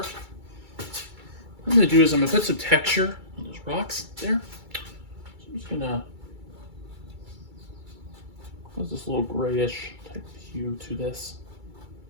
What I'm going to do is I'm going to put some texture on those rocks there. So I'm just going to cause this little grayish type of hue to this.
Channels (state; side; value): late; left; 2.3 ms